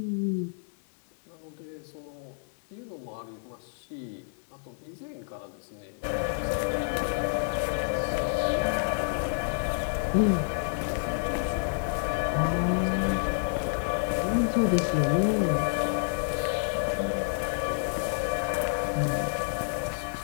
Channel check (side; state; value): right; silent; digital silence